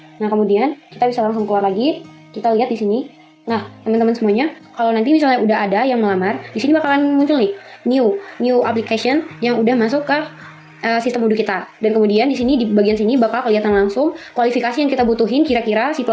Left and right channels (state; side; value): identical; both; correlation 1.00